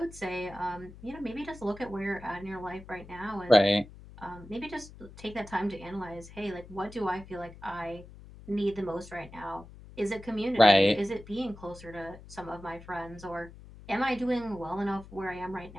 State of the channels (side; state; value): left; noise; hum, 18 dB below the sound